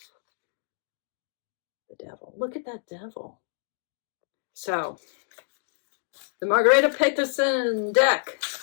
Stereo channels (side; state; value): right; silent; 60 dB below the other